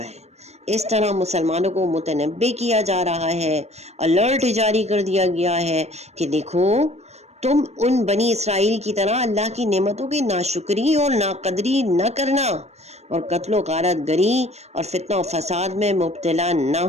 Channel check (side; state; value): left; late; 0.31 ms